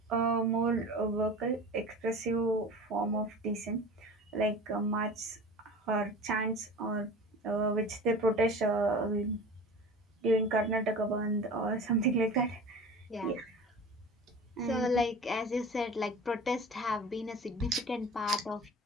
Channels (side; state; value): both; normal; correlation 0.37